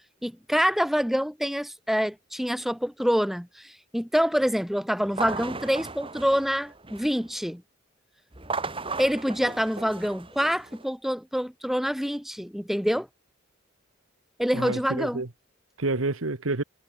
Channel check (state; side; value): normal; both; correlation 0.88